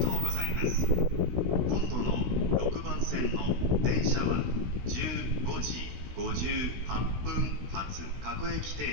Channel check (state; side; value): late; left; 16 ms